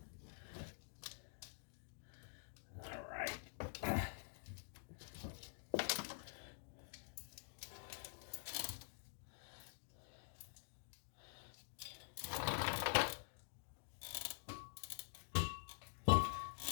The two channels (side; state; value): right; silent; digital silence